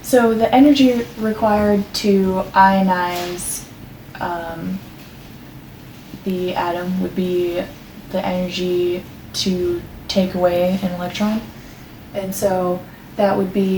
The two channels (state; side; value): identical; both; correlation 1.00